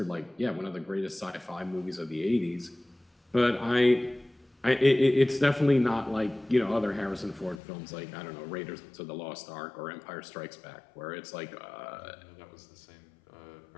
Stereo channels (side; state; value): right; drops out; at 7.6 s